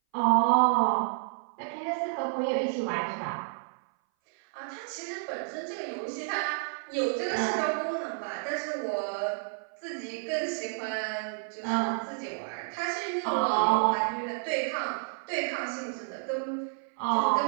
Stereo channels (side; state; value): left; silent; 58 dB below the other